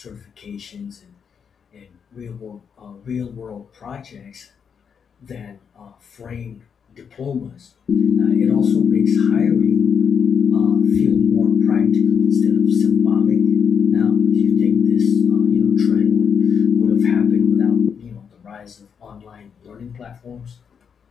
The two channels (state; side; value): quieter; right; 6.8 dB